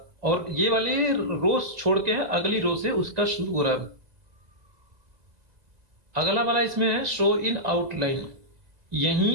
और ये वाले रोज छोड़ के है, अगली रो से उसका शुरू हो रहा है। अगला वाला इसमें है शो इन आउटलाइन।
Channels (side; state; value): left; late; 2.0 ms